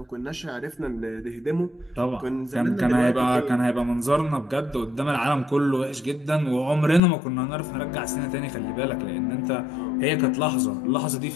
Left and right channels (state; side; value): drops out; right; at 7.0 s